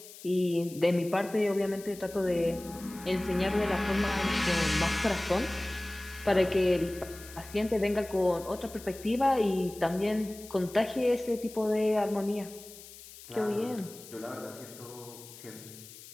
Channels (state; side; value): noise; left; hiss, 17 dB below the sound